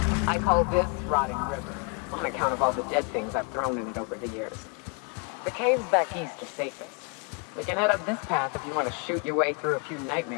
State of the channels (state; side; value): quieter; right; 35.2 dB